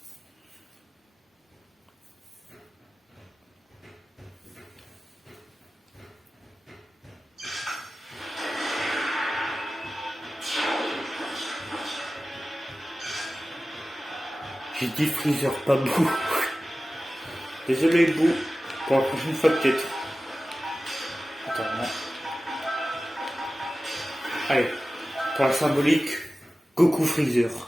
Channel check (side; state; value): both; normal; correlation 0.95